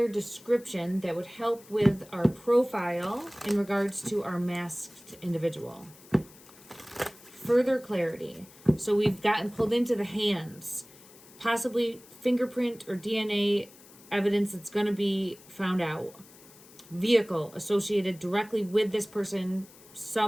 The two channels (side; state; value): left; noise; hiss, 23 dB below the sound